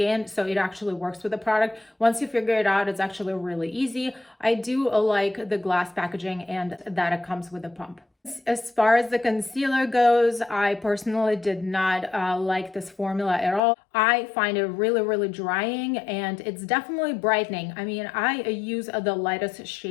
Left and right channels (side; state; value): right; drops out; at 13.6 s